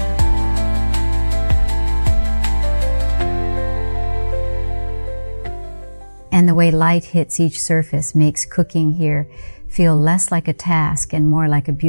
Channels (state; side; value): inverted; both; correlation -1.00